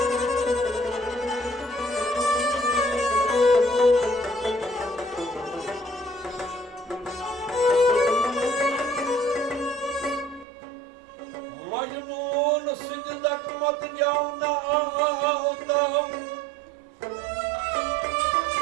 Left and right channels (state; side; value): drops out; left; at 10.5 s